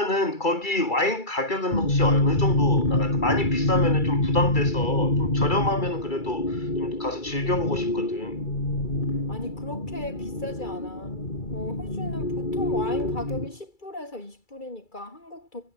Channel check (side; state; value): right; late; 2.3 ms